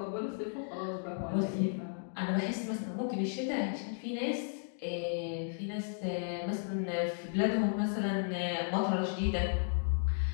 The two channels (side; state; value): right; silent; digital silence